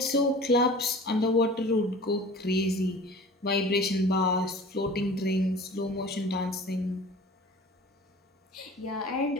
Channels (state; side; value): normal; both; correlation 0.42